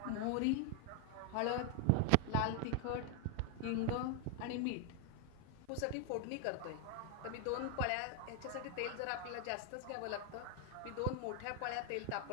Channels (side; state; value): both; different; correlation 0.00